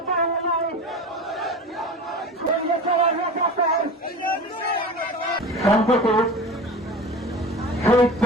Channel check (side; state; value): both; normal; correlation 0.33